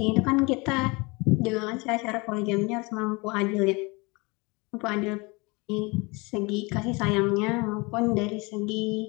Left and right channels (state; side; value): quieter; right; 26.8 dB